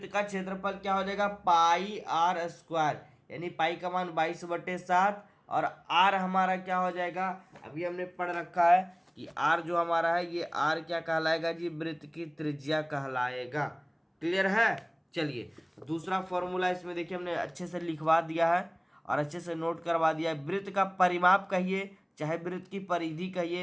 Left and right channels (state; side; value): identical; both; correlation 1.00